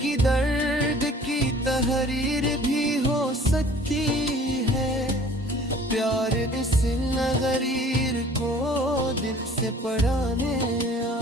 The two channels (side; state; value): both; normal; correlation 0.50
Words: दर्द की तहरीर भी हो सकती है, प्यार इस नगरीर को दिल से पढ़ाने